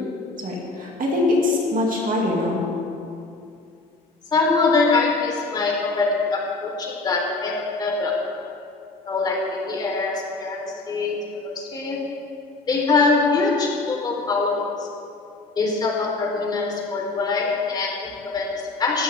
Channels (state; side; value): quieter; right; 3.3 dB